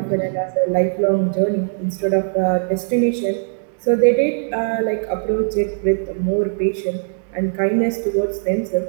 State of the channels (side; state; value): left; silent; digital silence